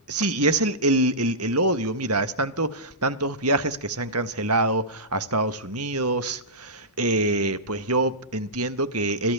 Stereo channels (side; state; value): both; normal; correlation -0.15